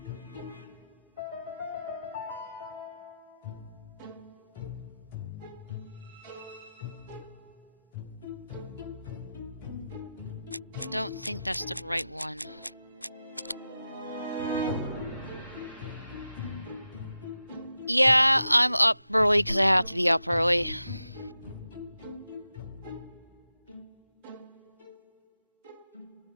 Don't think that's the right one. Yeah, I'm up early because I have to be up early.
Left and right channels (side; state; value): both; inverted; correlation -0.91